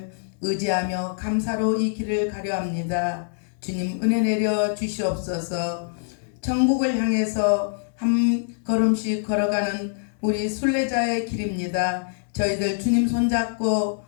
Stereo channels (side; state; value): right; silent; 62 dB below the other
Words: 의지하며 감사로 이 길을 가려 합니다. 주님 은혜 내려 주시옵소서. 천국을 향해서 한 걸음씩 걸어가는 우리 순례자의 길입니다. 저희들 주님 손잡고